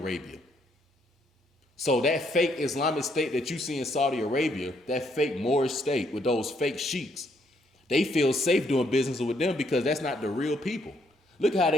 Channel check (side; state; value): both; normal; correlation 0.72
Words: So that fake Islamic state that you see in Saudi Arabia, that fake Moorish state with those fake sheiks, they feel safe doing business with them because that's not the real people. Look how